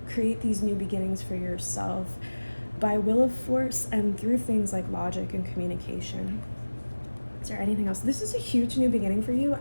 create these new beginnings for yourself by will of force and through things like logic and communication. Is there anything else? This is a huge new beginning for you.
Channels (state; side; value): inverted; both; correlation -1.00